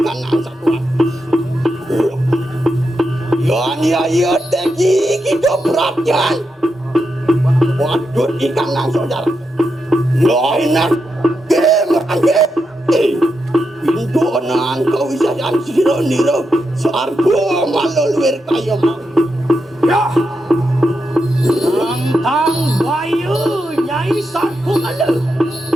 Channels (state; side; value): normal; both; correlation 0.85